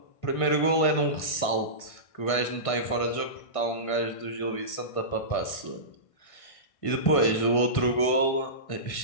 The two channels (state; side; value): late; right; 1.6 ms